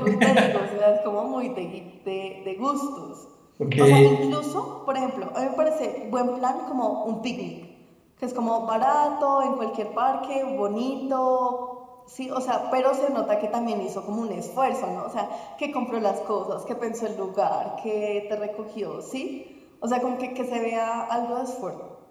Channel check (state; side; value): identical; both; correlation 1.00